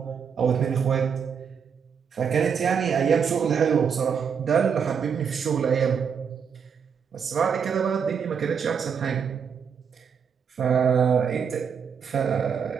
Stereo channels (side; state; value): left; quieter; 6.8 dB